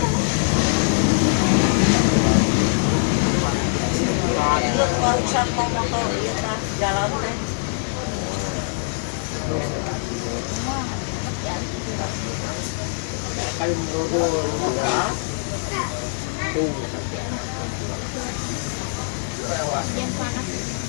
Itu barusan mau motor jalan teh. Kayu merodol buka. Tuh. Yang panas.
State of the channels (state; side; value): silent; right; digital silence